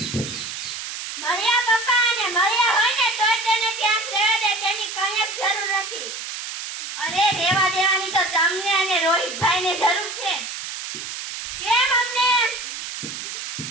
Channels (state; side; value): noise; right; hiss, 7 dB below the sound